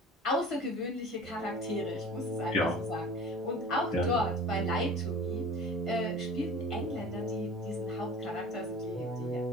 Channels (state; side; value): normal; both; correlation 0.41